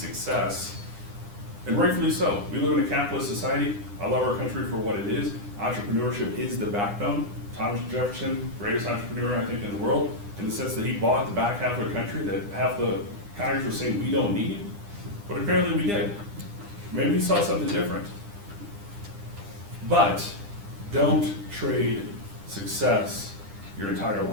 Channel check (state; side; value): late; left; 9.9 ms